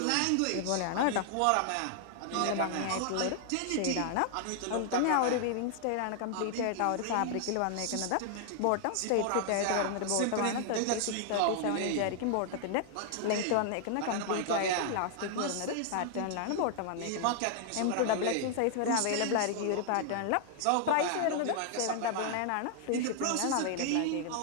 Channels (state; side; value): different; both; correlation 0.00